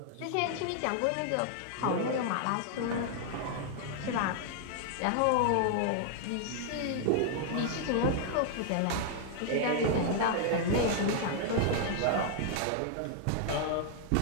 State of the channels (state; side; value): different; both; correlation 0.00